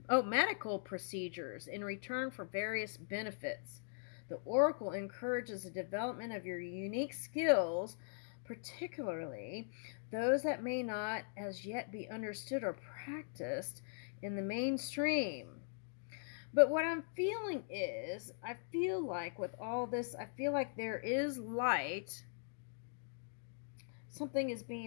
medical procedures in return for various benefits. The oracle encourages the development of your unique skills, particularly those that may not as yet be understood or practiced in the mainstream. But what I'm feeling is, I feel like with all this, I feel like there is light. Something is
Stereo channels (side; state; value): right; silent; digital silence